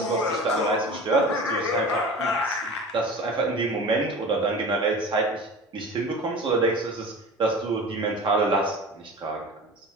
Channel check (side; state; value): both; normal; correlation 0.36